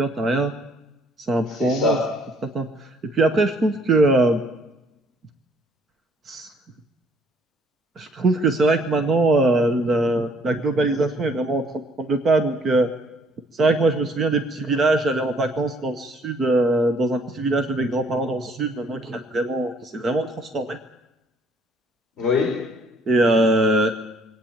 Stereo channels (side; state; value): both; normal; correlation 0.63